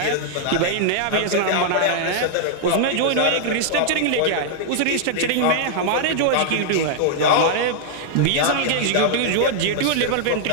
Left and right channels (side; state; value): both; different; correlation -0.01